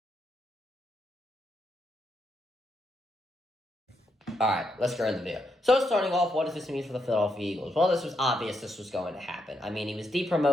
Alright, let's go into the video. So starting off, what does this mean for the Philadelphia Eagles? Well, this was obvious this was going to happen. I mean, he was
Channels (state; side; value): normal; both; correlation 0.80